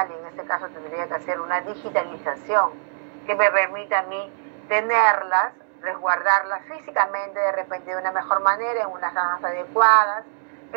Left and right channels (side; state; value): left; silent; digital silence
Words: y en este caso tendría que hacer una digitalización que me permita a mí tenerlas, resguardarlas físicamente de repente de una mejor manera, en unas cajas adecuadas,